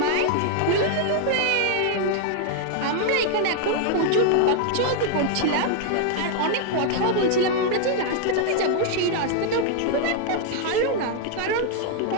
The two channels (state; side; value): different; both; correlation 0.00